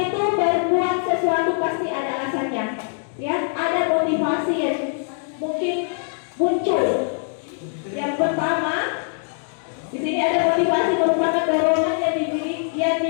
itu berbuat sesuatu pasti ada alasannya. Ya, ada motivasi yang mungkin muncul. Yang pertama, di sini ada motivasi merupakan dorongan yang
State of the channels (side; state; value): right; silent; 64 dB below the other